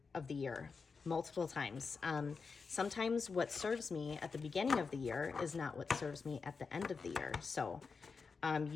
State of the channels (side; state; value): right; quieter; 5.0 dB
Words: of the year multiple times. Sometimes what serves me at the beginning of the year is not what serves me at the end of the year. So